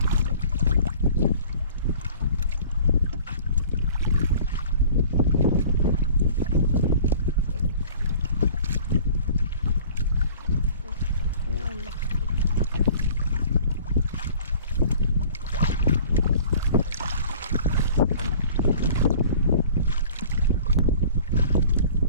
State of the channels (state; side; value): inverted; both; correlation -0.47